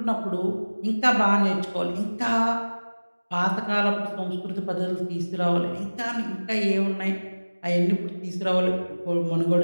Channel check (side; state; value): both; inverted; correlation -1.00